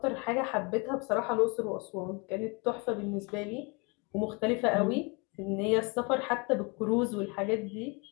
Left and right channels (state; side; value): quieter; right; 30.5 dB